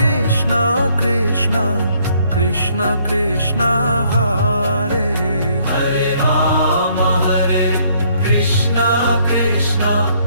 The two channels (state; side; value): inverted; both; correlation -0.66